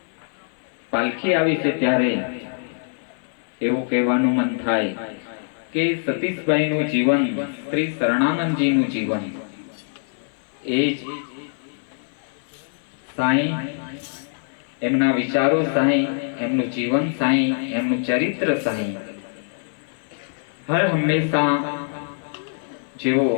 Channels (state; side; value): silent; right; 57 dB below the other